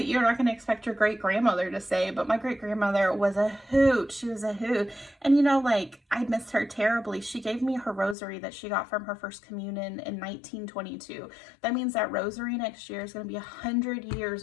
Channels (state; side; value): drops out; right; at 8.2 s